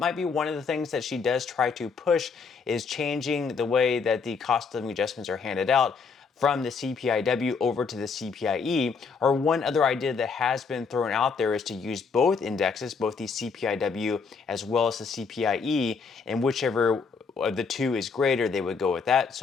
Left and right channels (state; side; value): quieter; right; 5.3 dB